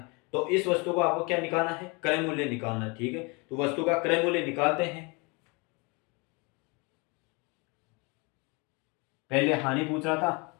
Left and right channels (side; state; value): right; quieter; 29.5 dB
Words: तो इस वस्तु को आपको क्या निकालना है, क्रय मूल्य निकालना है, ठीक है। तो वस्तु का क्रय मूल्य निकालते हैं। पहले हानि पूछ रहा था